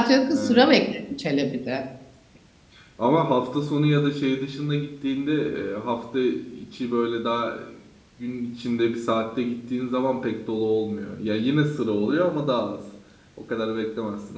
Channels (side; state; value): both; identical; correlation 1.00